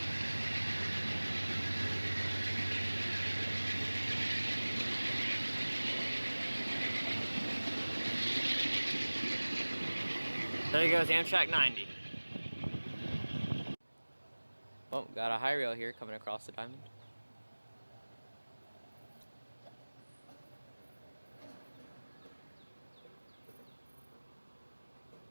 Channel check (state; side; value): inverted; both; correlation -1.00